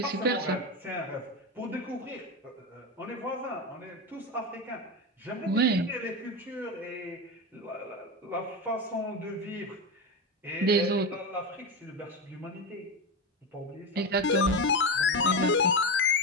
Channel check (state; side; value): normal; both; correlation 0.17